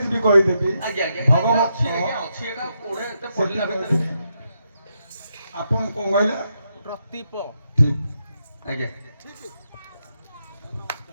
भी कहीदेवी ଆଜ୍ଞା ଆଜ୍ଞା भगवत ଅଛି ଆଜ୍ଞା ଅଛି ଏଟା କୋଡେ ଏତେ ପଢିଲା ଭିତରେ आपण कौन कहले ପ୍ରତୀପ ठीक ଆଜ୍ଞା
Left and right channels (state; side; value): inverted; both; correlation -0.82